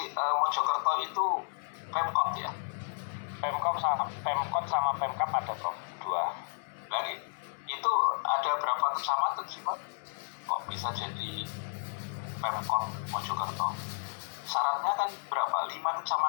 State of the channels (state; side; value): silent; right; 56 dB below the other